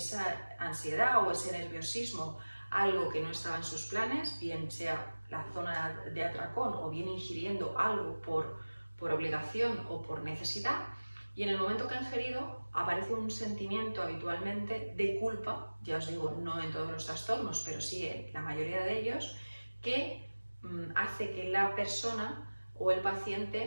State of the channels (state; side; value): inverted; both; correlation -1.00